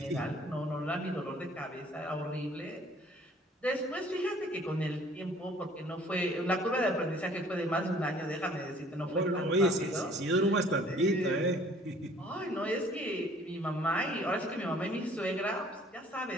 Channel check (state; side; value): normal; both; correlation 0.55